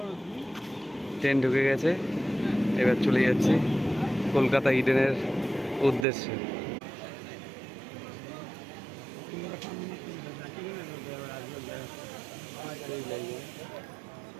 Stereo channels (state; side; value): drops out; left; at 6.1 s